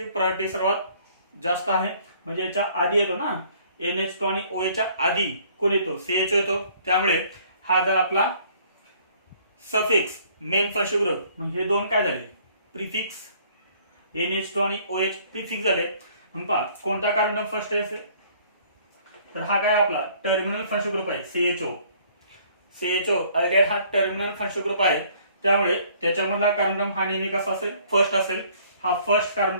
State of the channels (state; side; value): inverted; both; correlation -0.59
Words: प्रायोरिटी सर्वात जास्त आहे म्हणजे याच्या आधी येतो ना. NH2 आणि OH च्या आधी कोण येतो? CHO येतो. त्यामुळे हा जर आपला सफिक्स मेन फंक्शन ग्रुप, मग हे दोन काय झाले? प्रिफिक्स. NH2 आणि OH प्रिफिक्स झाले. मग पहा कोणता कार्बन फर्स्ट आहे? तर हा काय आपला टर्मिनल फंक्शन ग्रुप आहे CHO. CHO अगेन हा टर्मिनल फंक्शन ग्रुप आहे त्यामुळे त्याच्यामधला कार्बन हा नेहमी कसा असेल? फर्स्ट असेल. हा फर्स्ट